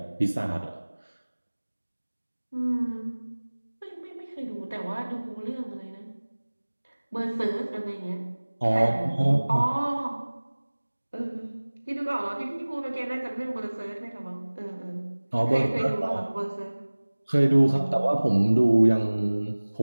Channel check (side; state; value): both; inverted; correlation -1.00